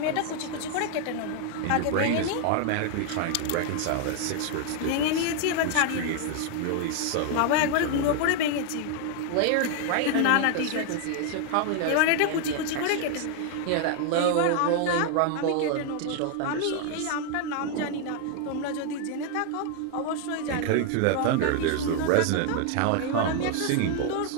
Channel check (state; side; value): different; both; correlation 0.00